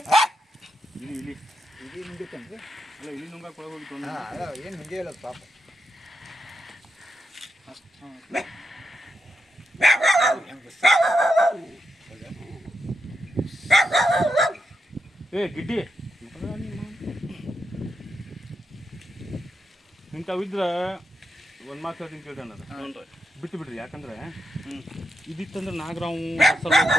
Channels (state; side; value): normal; both; correlation 0.85